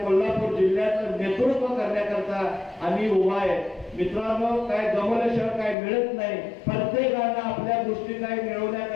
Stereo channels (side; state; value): right; drops out; at 5.8 s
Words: कोल्हापूर जिल्ह्याचं नेतृत्व करण्याकरता आम्ही उभा आहे। मित्रांनो, काय गमवल्याशिवाय काय मिळत नाही। प्रत्येकानं आपल्या गोष्टी काय